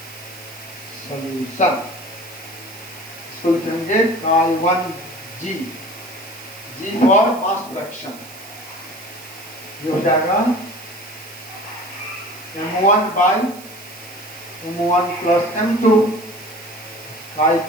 solution, इसको लिखेंगे Chi1G, G for mass fraction. ये हो जाएगा M1 by M1 plus M2,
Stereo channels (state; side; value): noise; right; hiss, 17 dB below the sound